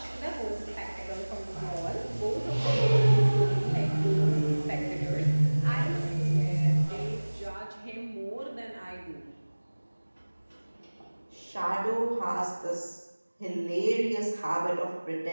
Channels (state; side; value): inverted; both; correlation -1.00